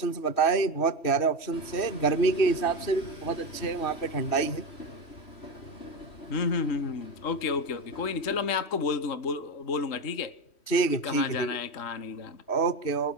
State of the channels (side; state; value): right; late; 3.1 ms